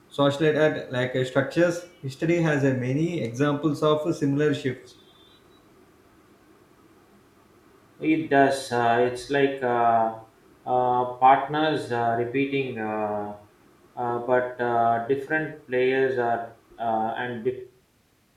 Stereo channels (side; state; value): both; identical; correlation 1.00